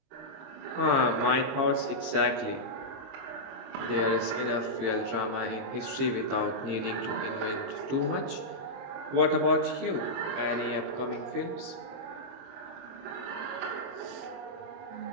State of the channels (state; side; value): late; left; 22 ms